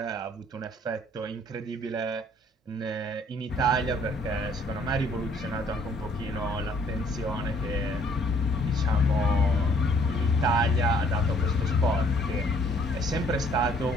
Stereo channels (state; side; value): normal; both; correlation 0.61